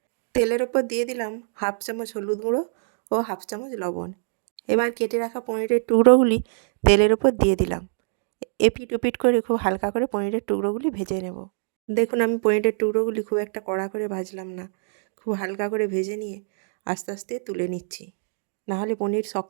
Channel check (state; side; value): silent; left; digital silence